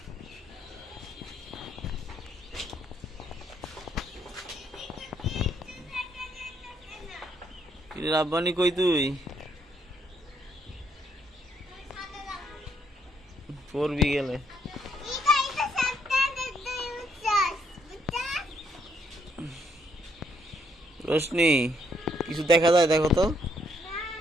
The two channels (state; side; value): normal; both; correlation 0.72